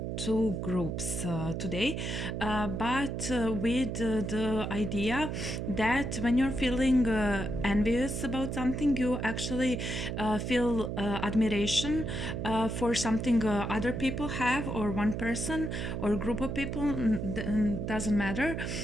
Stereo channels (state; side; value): noise; right; hum, 3 dB below the sound